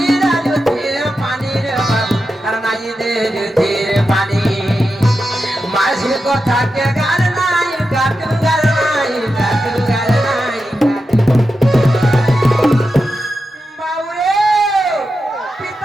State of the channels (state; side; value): normal; both; correlation 0.89